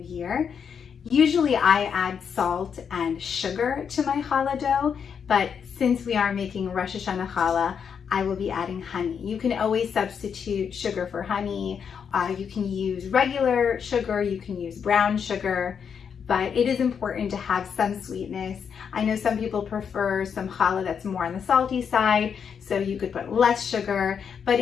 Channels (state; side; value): quieter; right; 7.1 dB